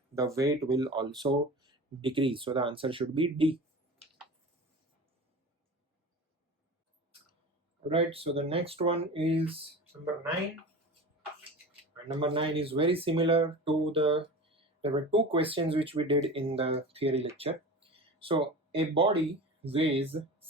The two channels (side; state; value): both; normal; correlation 0.33